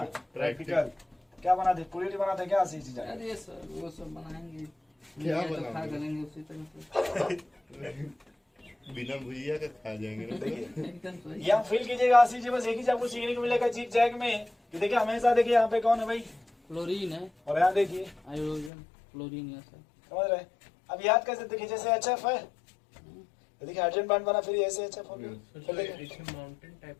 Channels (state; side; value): drops out; right; at 18.7 s